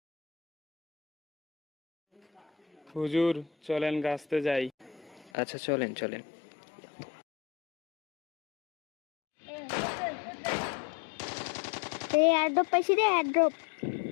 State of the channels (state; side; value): drops out; right; at 5.3 s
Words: হুজুর চলেন গাছতে যাই। আচ্ছা চলেন চলেন। এই এয়ারড্রপ পাইছি রে, এয়ারড্রপ।